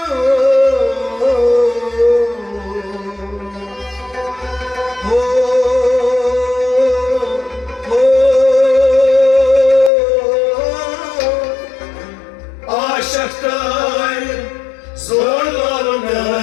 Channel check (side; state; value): right; drops out; at 9.9 s